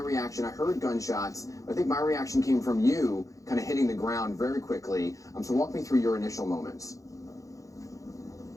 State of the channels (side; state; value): right; late; 0.16 ms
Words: I heard gunshots, but I think my reaction came from you kind of hitting the ground very quickly. So walk me through your initial moments.